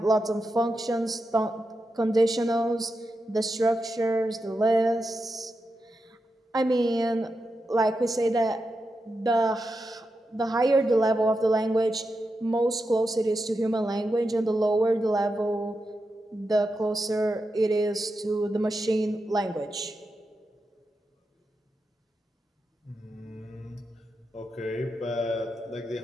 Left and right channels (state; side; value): normal; both; correlation 0.88